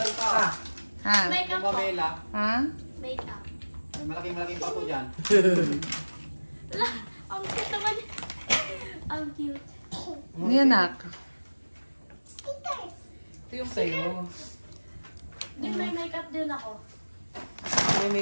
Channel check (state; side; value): inverted; both; correlation -1.00